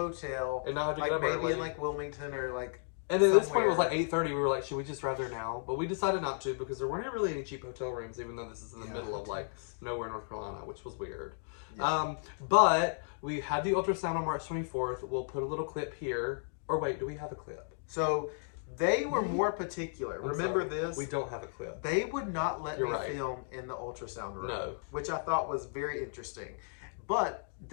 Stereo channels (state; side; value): silent; right; digital silence